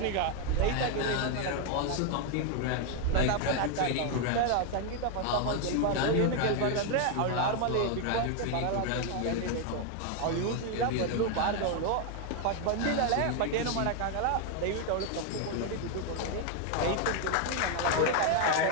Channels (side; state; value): both; different; correlation 0.01